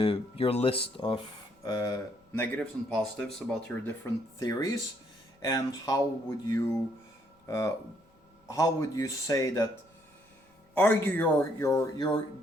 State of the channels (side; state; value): both; normal; correlation 0.69